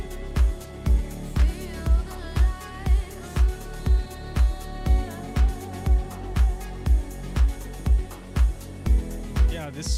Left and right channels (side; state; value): both; identical; correlation 1.00